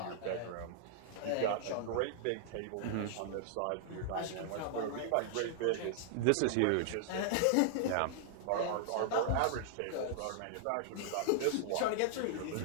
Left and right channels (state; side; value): different; both; correlation -0.01